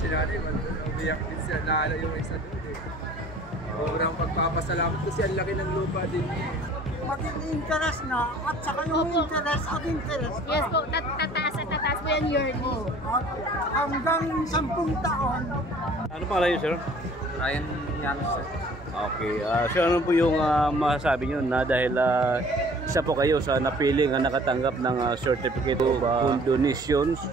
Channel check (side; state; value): both; normal; correlation 0.51